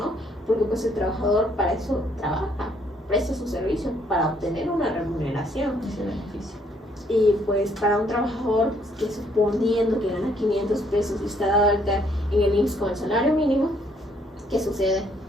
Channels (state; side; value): normal; both; correlation 0.67